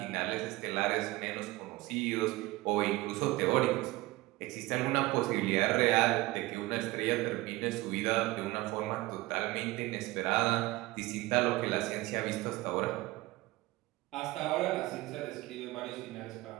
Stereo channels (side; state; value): left; quieter; 19.5 dB